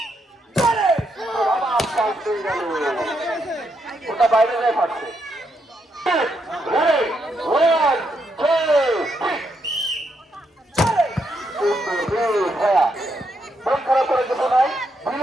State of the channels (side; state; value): both; normal; correlation 0.79